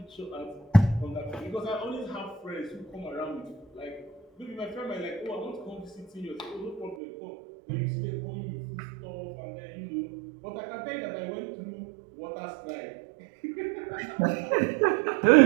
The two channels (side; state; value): left; drops out; at 7.0 s